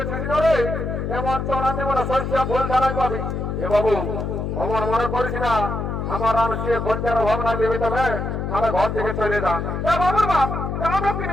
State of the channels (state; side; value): noise; left; hum, 3 dB below the sound